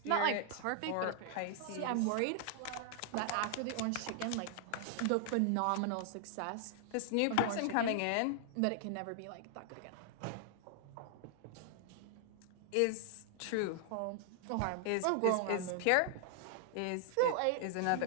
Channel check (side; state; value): both; different; correlation 0.00